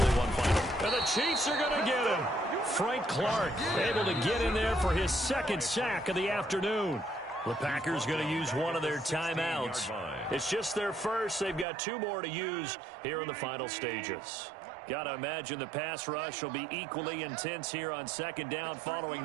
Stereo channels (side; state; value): left; drops out; at 11.7 s